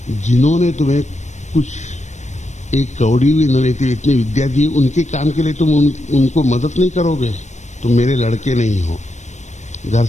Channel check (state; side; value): late; right; 0.34 ms